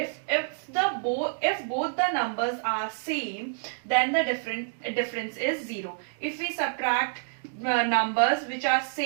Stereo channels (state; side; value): silent; left; digital silence